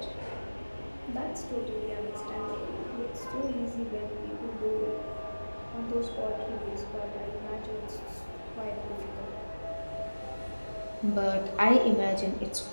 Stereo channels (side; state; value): both; inverted; correlation -1.00